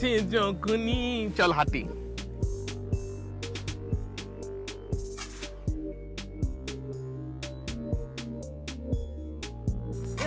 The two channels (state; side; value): identical; both; correlation 1.00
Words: যখনই। চল হাঁটি।